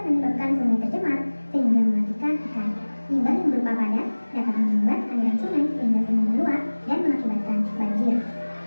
menyebabkan sungai tercemar sehingga mematikan ikan. Limbah yang berupa padat dapat membuat aliran sungai sehingga sungai meluap dan mengakibatkan banjir.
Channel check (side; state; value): both; inverted; correlation -1.00